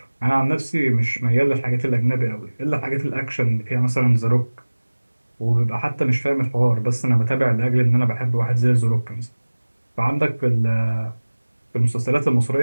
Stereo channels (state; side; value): inverted; both; correlation -1.00